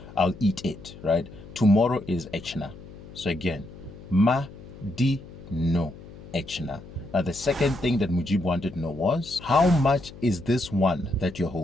I'll eat it, right? Tomorrow is ɛkyena. So again, Madino ɛkyena. Now the second thing that Mujeeb wanted to know was, how much is this one that you're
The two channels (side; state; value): left; noise; hum, 17 dB below the sound